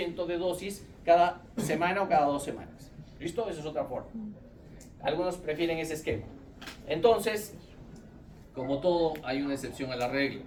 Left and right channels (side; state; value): both; identical; correlation 1.00